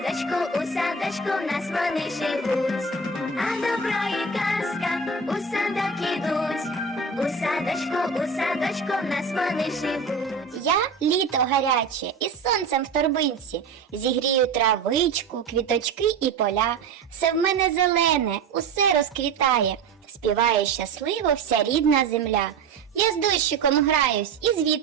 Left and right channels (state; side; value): quieter; left; 4.7 dB